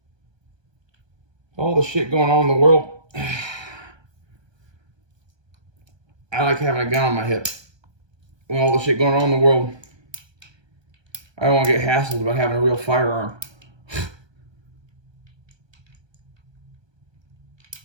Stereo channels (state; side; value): late; left; 1.2 ms